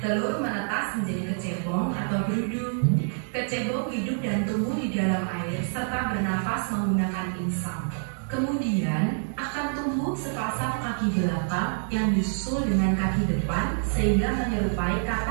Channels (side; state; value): left; silent; digital silence